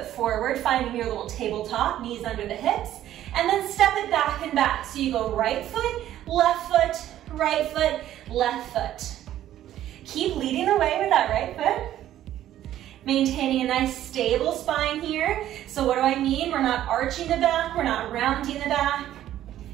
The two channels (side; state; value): left; quieter; 12.5 dB